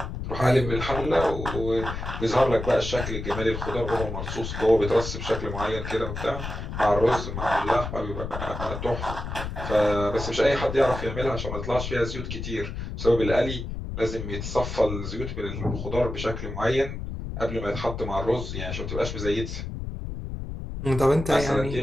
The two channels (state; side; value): noise; left; rumble, 6 dB below the sound